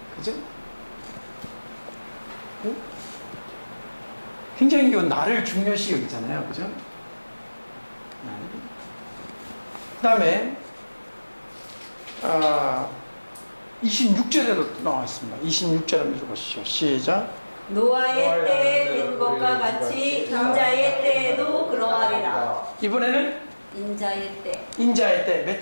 그죠? 응? 굉장히 이 날을 중요시 여기잖아요. 그죠? 그 다음에 26절에도 나왔습니다. 26절 한번 읽어보시죠. 시작. 노아의 때에 된 것과 같이 인자의 때에도 그러하리라. 이번에는 인자의 때 몇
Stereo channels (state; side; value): inverted; both; correlation -1.00